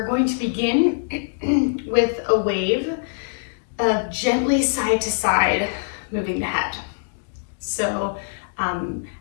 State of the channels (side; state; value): right; silent; digital silence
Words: going to begin with a wave of gently side to side moving the head. So